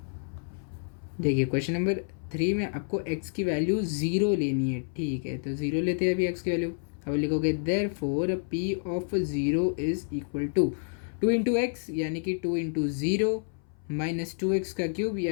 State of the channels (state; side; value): silent; right; 59 dB below the other